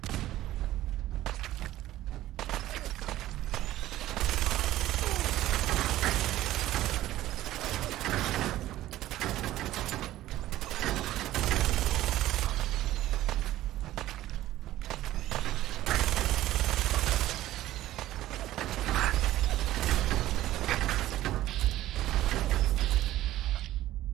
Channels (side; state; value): left; quieter; 14.7 dB